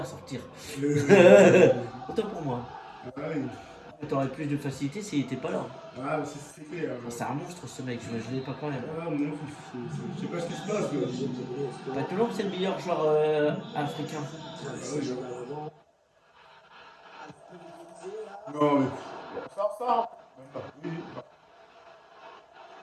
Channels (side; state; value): both; identical; correlation 1.00